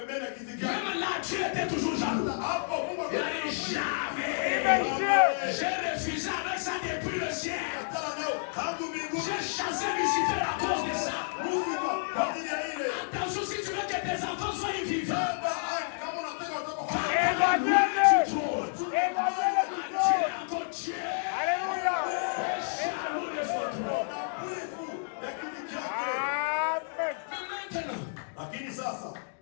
Même là, Dieu était toujours jaloux. Il a dit jamais. J'ai refusé avec ça depuis le ciel. J'ai chassé Lucifer à cause de ça. Attention, si tu veux que tes enfants soient vivants,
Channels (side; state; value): right; silent; digital silence